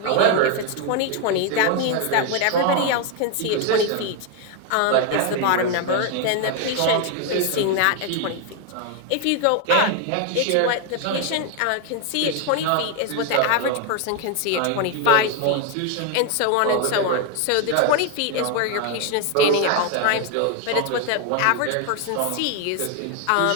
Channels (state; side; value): different; both; correlation 0.01